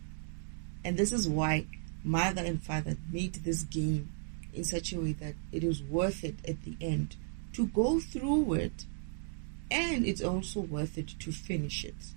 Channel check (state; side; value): silent; left; digital silence